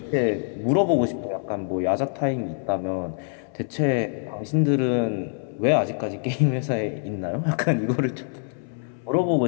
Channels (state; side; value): silent; right; 62 dB below the other